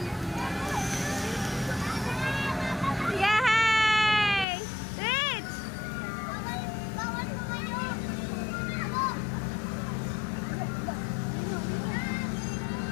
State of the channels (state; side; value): drops out; right; at 4.5 s